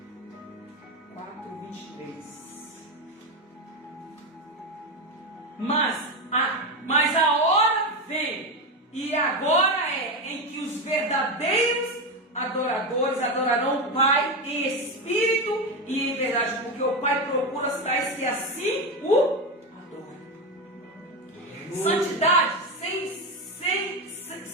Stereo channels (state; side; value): normal; both; correlation 0.15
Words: Mas a hora vem, e agora é, em que os verdadeiros adoradores adorarão o Pai em espírito e em verdade, porque o Pai procura os tais que assim o adoram. Santidade, sem